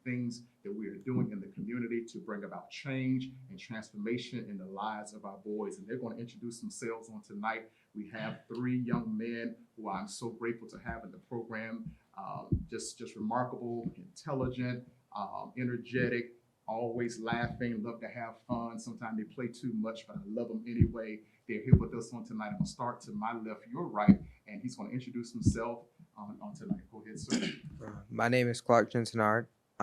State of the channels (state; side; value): identical; both; correlation 1.00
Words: things that we are doing in the community to bring about change and transformation in the lives of our boys. And they're going to introduce themselves on tonight. We have three young men who I'm so grateful to have in the program. Just remarkable, intelligent, energetic, always laughing, love to have fun. Sometimes they play too much, but I love them anyway. They're here with us on tonight. I'm going to start to my left, your right, and he's going to introduce himself on tonight. Go ahead, sir. My name is Clark Jensenard.